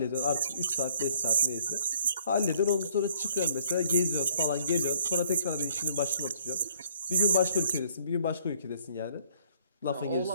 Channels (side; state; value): both; inverted; correlation -0.63